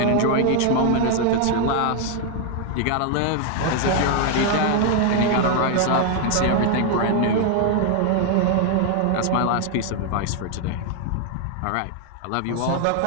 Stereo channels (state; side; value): different; both; correlation 0.00